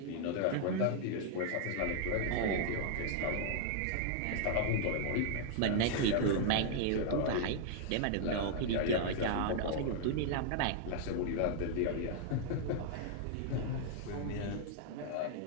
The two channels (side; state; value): both; different; correlation 0.00